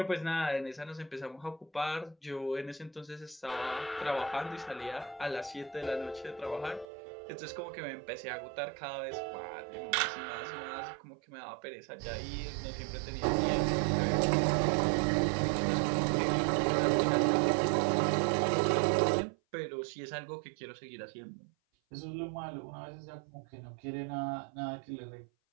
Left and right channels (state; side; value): drops out; left; at 6.9 s